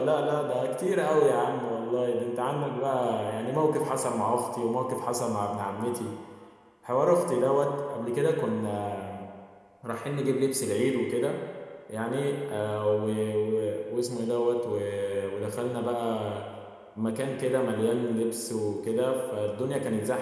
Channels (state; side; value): identical; both; correlation 1.00